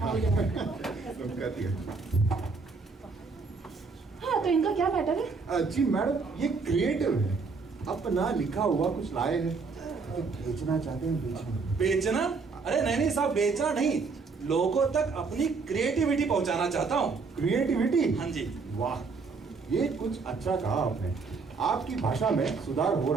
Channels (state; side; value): quieter; left; 4.6 dB